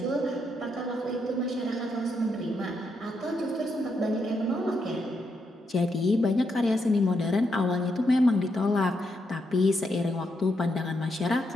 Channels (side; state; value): both; normal; correlation 0.80